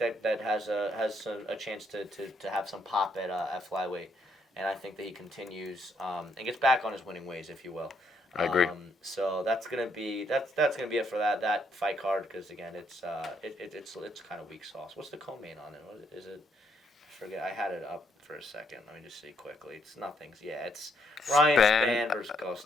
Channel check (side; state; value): both; normal; correlation 0.73